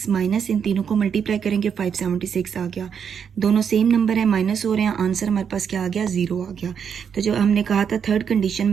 माइनस इन तीनों को मल्टीप्लाई करेंगे 576 आ गया. दोनों सेम नंबर है, माइनस हो रहे हैं. आंसर हमारे पास क्या आ गया? 0 आ गया. तो जो हमने कहा था थर्ड कंडीशन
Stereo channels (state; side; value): quieter; left; 7.3 dB